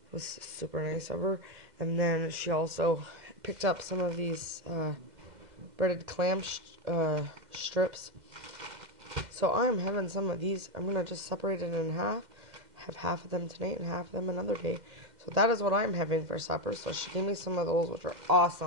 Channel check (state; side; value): late; left; 2.0 ms